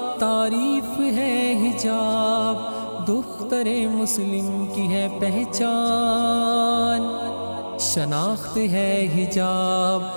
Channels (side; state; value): both; inverted; correlation -1.00